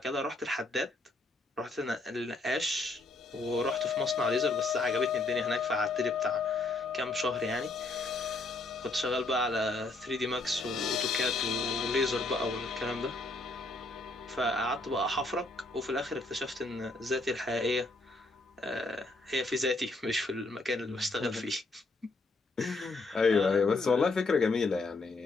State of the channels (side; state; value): right; quieter; 3.1 dB